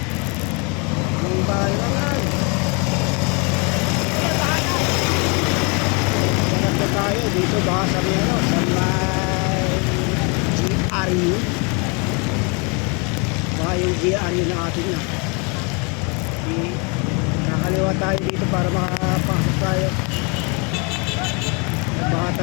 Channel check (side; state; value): right; quieter; 32.4 dB